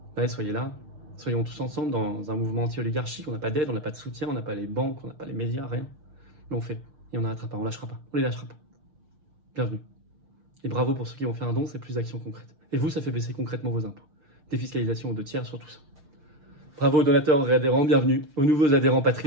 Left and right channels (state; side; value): late; left; 6.5 ms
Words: Allez, soyez là. Soyons tous ensemble dans un mouvement anti-oligarchique. On n'a pas d'aide, on n'a pas de soutien, on n'a pas les banques, on n'a pas les médias, rien. Mais on fait. Et on n'arrêtera pas, on lâchera pas. On les lâchera pas. Bienvenue. Et bravo pour ceux qui vont faire un don, c'est plus d'actions concrètes. Et vous, ça fait baisser concrètement vos impôts. Défiscalisation aux 2 tiers sur tout ça. Bravo aux donateurs et adhérents, bienvenue aux nouveaux adhérents